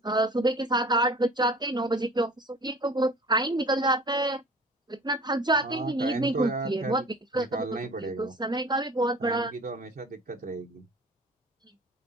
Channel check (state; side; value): normal; both; correlation 0.44